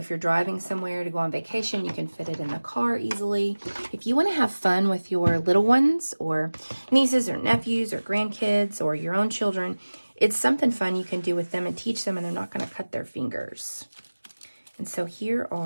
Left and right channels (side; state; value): both; inverted; correlation -1.00